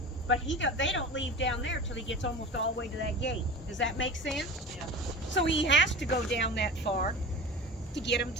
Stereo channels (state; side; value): normal; both; correlation 0.34